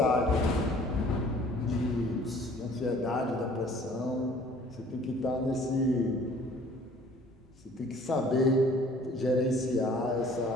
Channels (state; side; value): normal; both; correlation 0.53